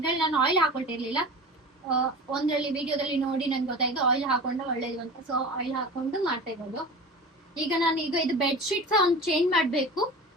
ನಾನು ಆಯಿಲ್ ಹಾಕೊಳ್ತಿರ್ಲಿಲ್ಲ. ಒಂದ್ರಲ್ಲಿ ವಿಡಿಯೋದಲ್ಲಿ ನೋಡಿ ನನ್ಗೆ ಗೊತ್ತಾಯ್ತು ಆಯಿಲ್ ಹಾಕೊಂಡ್ರೆ ಒಳ್ಳೇದು ಅಂತ. ಸೊ ಆಯಿಲ್ ಹಾಕೊಂಡು ಮಾಡ್ತಾ ಇರೋದು. ಈಗ ಇದು ಬೆಡ್ ಶೀಟ್ ಸಹ ಒಂದು ಚೇಂಜ್ ಮಾಡ್ಬೇಕು.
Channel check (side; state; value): both; normal; correlation 0.34